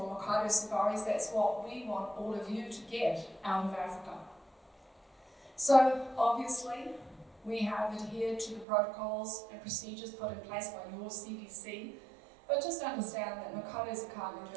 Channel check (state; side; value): drops out; left; at 8.7 s